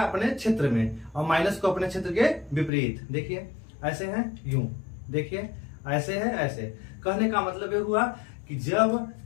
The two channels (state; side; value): drops out; right; at 2.7 s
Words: अपने क्षेत्र में, और माइनस को अपने क्षेत्र के विपरीत। देखिए ऐसे है, यूं देखिए, ऐसे है, ऐसे। कहने का मतलब ये हुआ कि जब